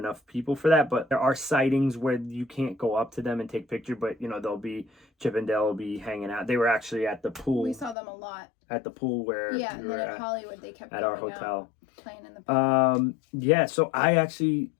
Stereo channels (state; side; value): drops out; right; at 8.0 s